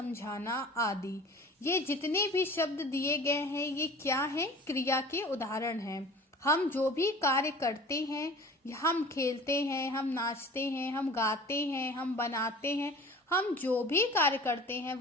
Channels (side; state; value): both; normal; correlation 0.43